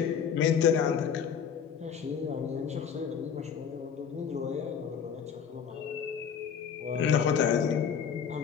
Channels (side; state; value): right; quieter; 7.4 dB